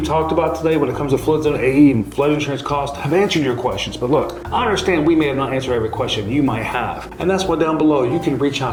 talked about today when it comes to flood zone AE and flood insurance costs have answered your questions. But look, I understand we may have not answered every question you might have. And that's why down below you can reach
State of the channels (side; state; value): both; identical; correlation 1.00